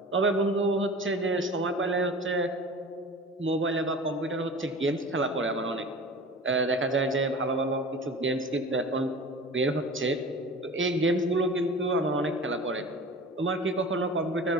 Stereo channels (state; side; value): normal; both; correlation 0.38